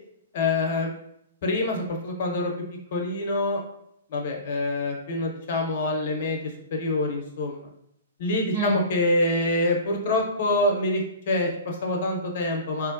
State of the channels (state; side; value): inverted; both; correlation -0.37